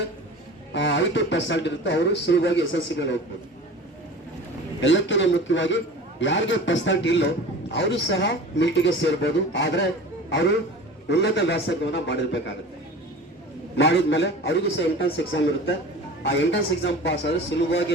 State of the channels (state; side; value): normal; both; correlation 0.37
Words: 5% ಇರುತ್ತೆ ಅವರು ಸುಲಭವಾಗಿ SSC ಮೇಲೆ ಹೋಗ್ಬೋದು. ಎಲ್ಲಕ್ಕಿಂತ ಮುಖ್ಯವಾಗಿ ಯಾರಿಗೆ ಪರ್ಸೆಂಟ್ ಇಲ್ಲೋ ಅವರು ಸಹ ಮಿಲಿಟರಿಗೆ ಸೇರ್ಬೋದು. ಆದ್ರೆ ಅವರು ಉನ್ನತ ವ್ಯಾಸಂಗವನ್ನ ಮಾಡಿರ್ಬೇಕಾಗುತ್ತೆ. ಮಾಡಿದ್ಮೇಲೆ ಅವರಿಗೂ ಸಹ ಎಂಟ್ರೆನ್ಸ್ ಎಕ್ಸಾಮ್ ಇರುತ್ತೆ. ಆ ಎಂಟ್ರೆನ್ಸ್ ಎಕ್ಸಾಮ್ ಪಾಸ್ ಆದ್ರೆ